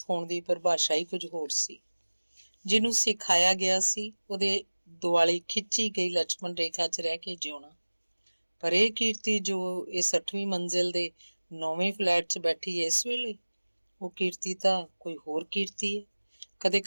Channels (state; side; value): inverted; both; correlation -1.00